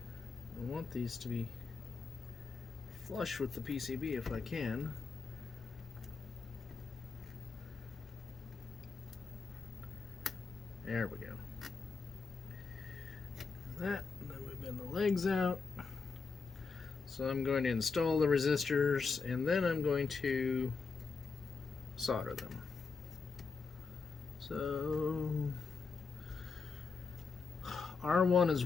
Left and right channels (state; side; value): quieter; right; 4.8 dB